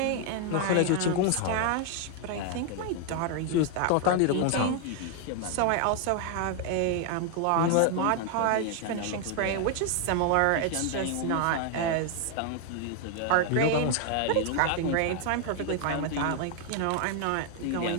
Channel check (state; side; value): different; both; correlation 0.00